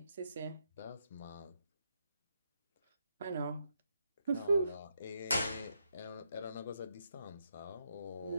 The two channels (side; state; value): both; inverted; correlation -0.79